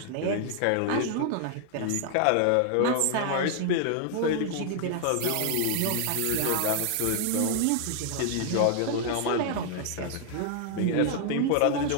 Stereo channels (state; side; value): different; both; correlation 0.00